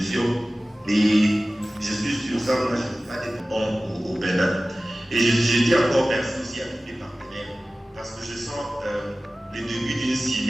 Et je suis sûr, ça, moi, je ne peux pas être bon au Bénin. Et je dis encore merci aussi à tous les partenaires, parce que je sens le début d'une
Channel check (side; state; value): both; normal; correlation 0.97